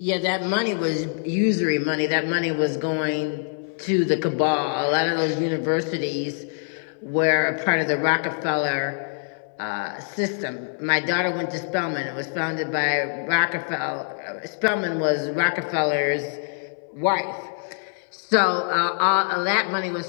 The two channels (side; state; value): right; silent; digital silence